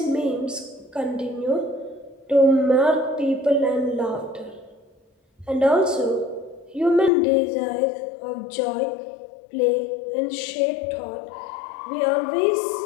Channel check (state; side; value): drops out; right; at 7.1 s